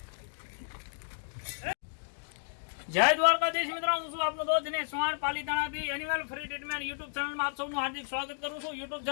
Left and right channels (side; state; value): right; silent; digital silence